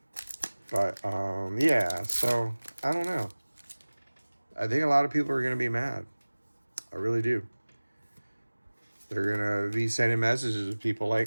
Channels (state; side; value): inverted; both; correlation -1.00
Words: But, yeah, so I don't know. I think a lot of people are going to be mad. I really do. They're going to be sending messages to people